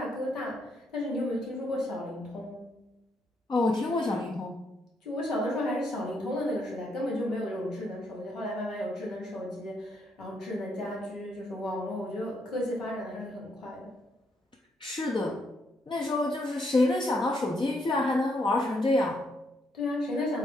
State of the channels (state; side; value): normal; both; correlation 0.75